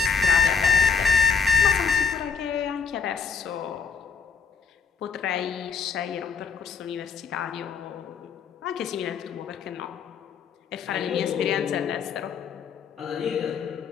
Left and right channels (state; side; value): quieter; right; 5.9 dB